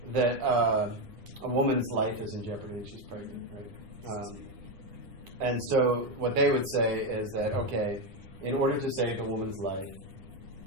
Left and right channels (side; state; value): left; late; 10 ms